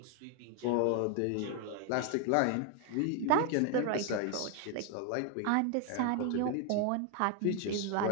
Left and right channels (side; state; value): both; different; correlation 0.01